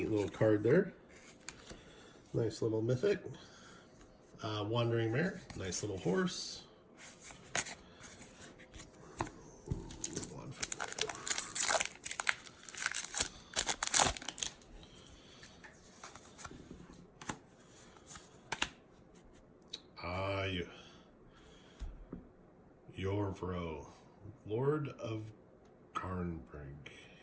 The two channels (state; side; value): identical; both; correlation 1.00